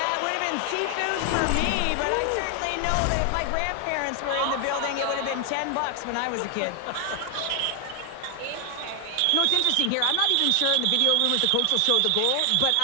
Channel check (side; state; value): both; different; correlation 0.00